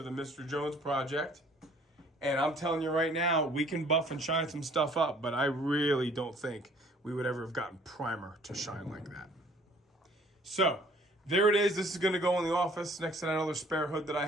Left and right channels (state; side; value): normal; both; correlation 0.57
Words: the Mr. Jones project. And I'm telling you right now, we can buff and shine some stuff up, but I really don't think we would ever have gotten primer to shine like that. So there it is. This is going to go in the office next to that other spare hood that I